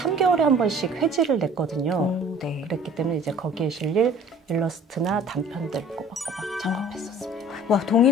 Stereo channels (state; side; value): normal; both; correlation 0.49